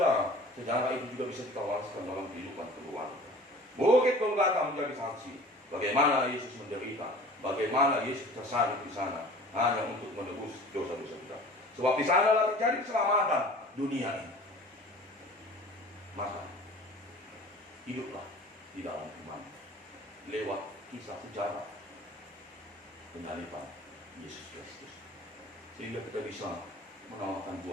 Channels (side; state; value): both; normal; correlation 0.44